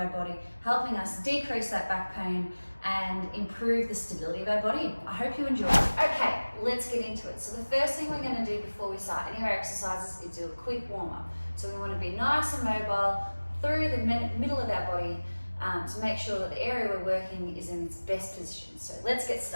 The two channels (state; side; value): inverted; both; correlation -1.00